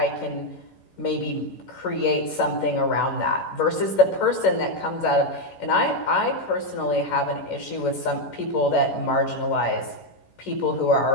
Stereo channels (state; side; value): late; right; 11 ms